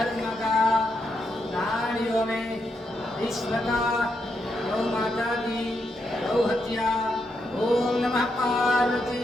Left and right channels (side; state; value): both; normal; correlation 0.81